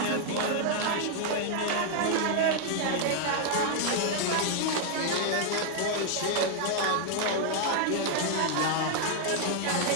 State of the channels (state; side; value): different; both; correlation 0.00